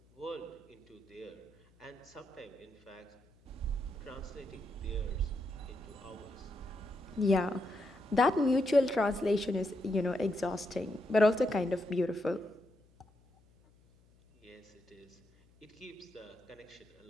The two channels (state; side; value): noise; left; hum, 30 dB below the sound